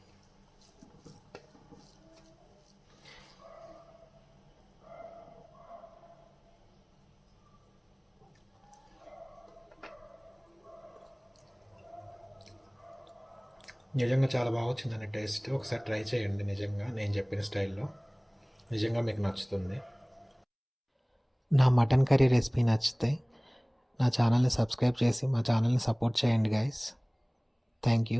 నిజంగా చాలా బాగా వచ్చిందండి టేస్ట్. ఒకసారి ట్రై చేయండి, నిజంగా నేను చెప్పిన స్టైల్లో నిజంగా మీకు నచ్చుతుంది. నా మటన్ కర్రీ రెసిపీ నచ్చితే నా ఛానల్ని సబ్స్క్రైబ్ చేసి మా ఛానల్ని సపోర్ట్ చేయండి guys. Thank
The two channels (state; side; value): identical; both; correlation 1.00